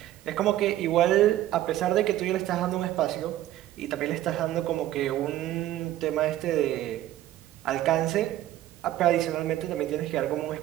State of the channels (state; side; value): quieter; left; 13.8 dB